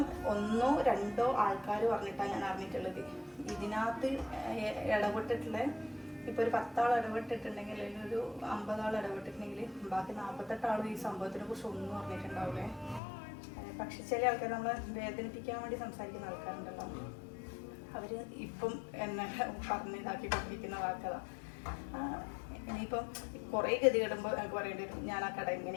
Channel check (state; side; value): drops out; right; at 13.0 s